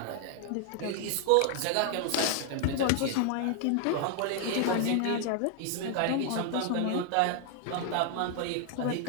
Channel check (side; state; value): both; different; correlation 0.00